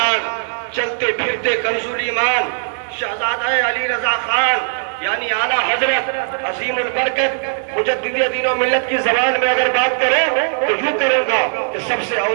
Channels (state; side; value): silent; left; 67 dB below the other